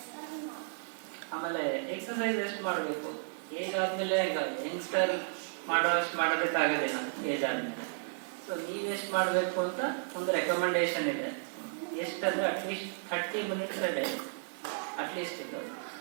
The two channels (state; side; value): silent; left; digital silence